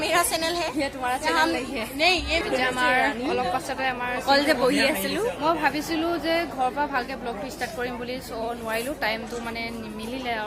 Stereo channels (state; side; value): identical; both; correlation 1.00